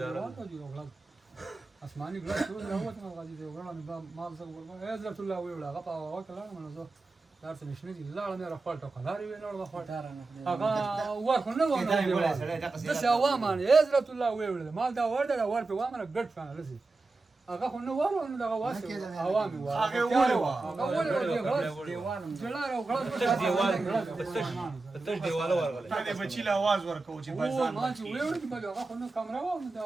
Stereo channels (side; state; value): left; quieter; 3.5 dB